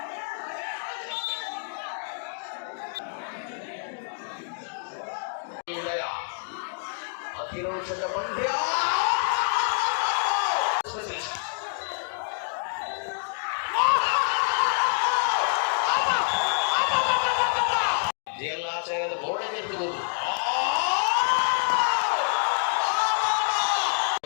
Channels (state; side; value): silent; right; digital silence